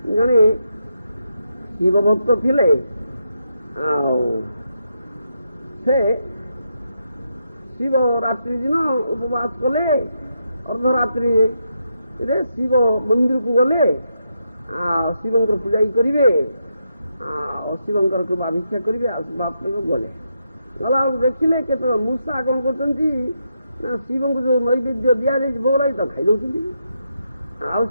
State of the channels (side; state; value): both; inverted; correlation -0.82